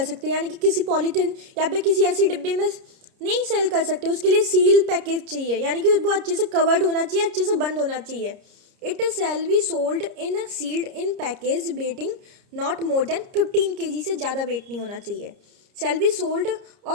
सकते, यानी कि किसी पॉलीथिन या फिर किसी ऐसी डिब्बे में नहीं सेल कर सकते। उसके लिए सील पैकेज चाहिए, यानी कि वो अच्छे से कवर्ड होना चाहिए, अच्छे से बंद होना चाहिए। It shall be sold in sealed in package weighting not more than 15 kg, से ज़्यादा वेट नहीं होना चाहिए। शैल बी सोल्ड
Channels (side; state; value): left; late; 30 ms